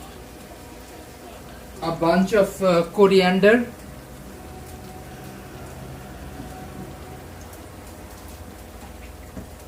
A bunch of coriander.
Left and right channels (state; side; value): identical; both; correlation 1.00